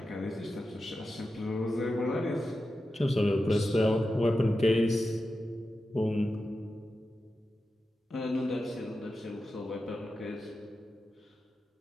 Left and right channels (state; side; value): normal; both; correlation 0.91